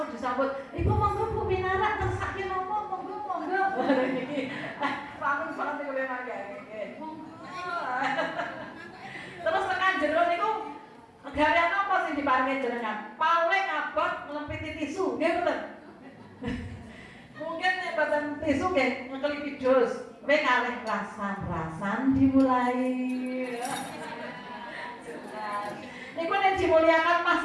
disambut, "Ibu monggo Bu Binara tersake nopo monggo." Niki paling oleh mangga. Terus tekan jero niku garian apa sing diparingi jenengan? Paling abot nglempiti tisu, nggih mboten? Mungkin nek boten tisu nggih ngekelipi dus. Kowe kalih rasan-rasan dimulai. Niku nek dimuliakan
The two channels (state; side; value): identical; both; correlation 1.00